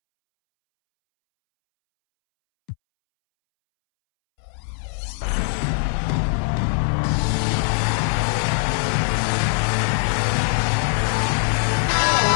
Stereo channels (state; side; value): silent; right; 65 dB below the other